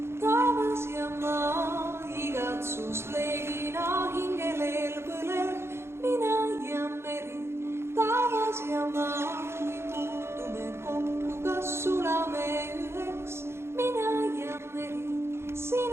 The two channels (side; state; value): left; late; 0.12 ms